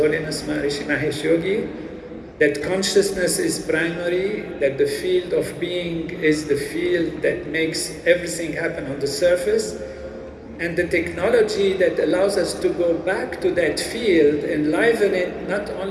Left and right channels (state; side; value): identical; both; correlation 1.00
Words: Maharishi Mahesh Yogi, that consciousness is primary, that the field of being is the field that makes everything happen on the surface, and the technology that allows us to go back to that field, enliven it not